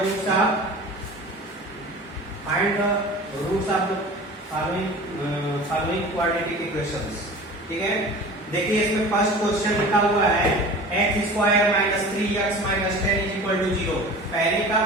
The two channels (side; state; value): both; normal; correlation 0.38